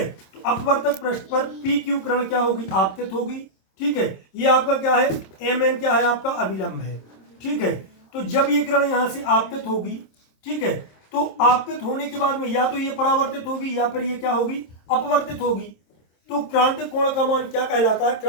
तो अपवर्तक पृष्ठ पर पी क्यू किरण क्या होगी, आपतित होगी। ठीक है, ये आपका क्या है, एम एन क्या है, आपका अभिलंब है। ठीक है, तो जब ये किरण यहाँ से आपतित होगी, ठीक है, तो आपतित होने के बाद में या तो ये परावर्तित होगी या फिर ये क्या होगी, अपवर्तित होगी। तो क्रांतिक कोण का मान क्या कहलाता है,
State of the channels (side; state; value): right; late; 26 ms